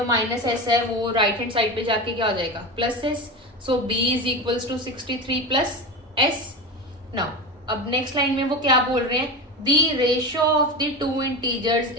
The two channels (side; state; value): both; normal; correlation 0.24